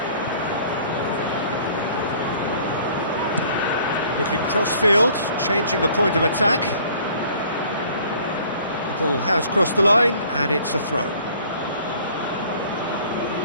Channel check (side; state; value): both; inverted; correlation -0.54